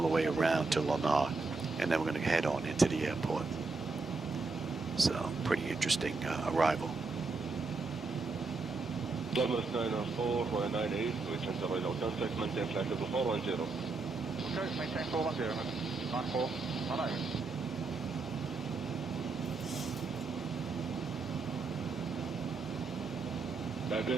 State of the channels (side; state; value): left; quieter; 4.0 dB